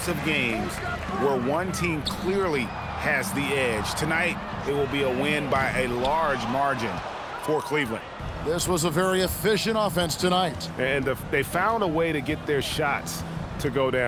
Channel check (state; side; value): identical; both; correlation 1.00